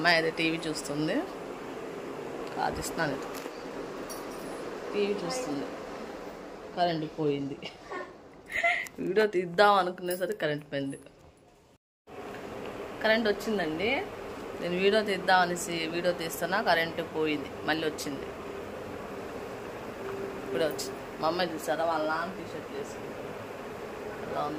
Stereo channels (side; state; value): both; identical; correlation 1.00